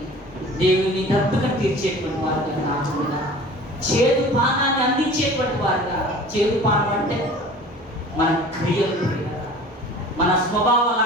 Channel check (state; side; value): normal; both; correlation 0.43